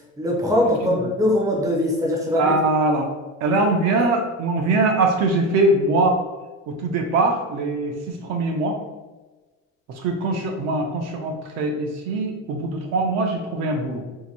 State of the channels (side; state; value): both; normal; correlation 0.19